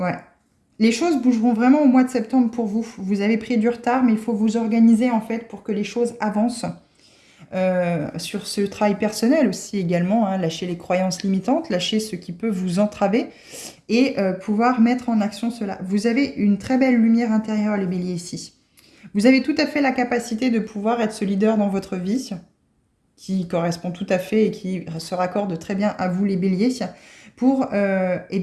Les choses bougeront vraiment au mois de septembre pour vous. Vous avez pris du retard, mais il faut vous organiser en fait pour que les choses avancent. Sur ce travail personnel aussi également, lâcher les croyances limitantes, lâcher ce qui peut vous entraver et pouvoir mettre en action cela. Vous avez une très belle lumière intérieure, les béliers, ici. Vous avez tout à fait la capacité de pouvoir être ce leader dans votre vie, qui correspond tout à fait et qui se raccorde très bien à vous les béliers, pour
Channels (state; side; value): identical; both; correlation 1.00